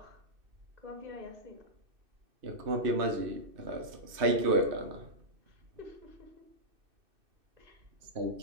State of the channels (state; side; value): late; left; 2.6 ms